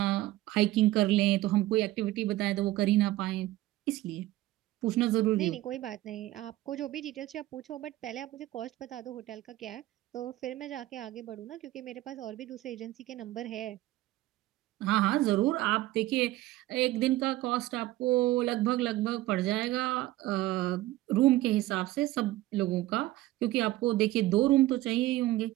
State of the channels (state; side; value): quieter; left; 16.5 dB